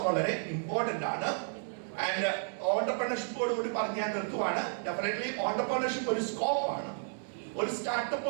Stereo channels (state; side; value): silent; left; digital silence